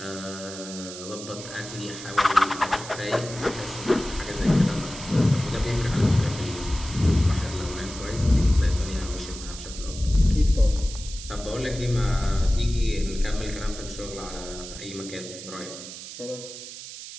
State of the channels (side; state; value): right; noise; hiss, 12 dB below the sound